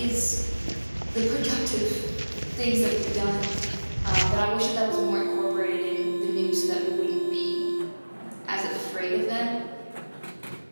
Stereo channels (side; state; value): both; inverted; correlation -1.00